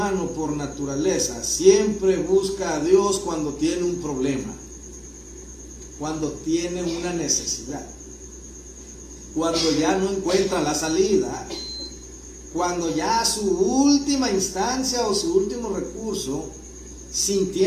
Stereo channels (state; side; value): identical; both; correlation 1.00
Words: por naturaleza siempre busca a Dios cuando tiene un problema, cuando tiene una necesidad, cuando ya no encuentra la salida, cuando ya su última instancia o su último recurso,